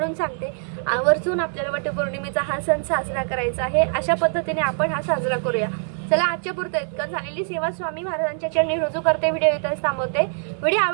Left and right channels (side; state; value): left; silent; 56 dB below the other